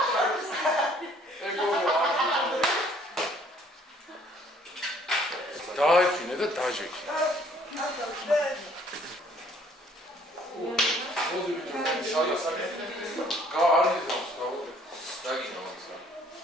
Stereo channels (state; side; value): normal; both; correlation 0.60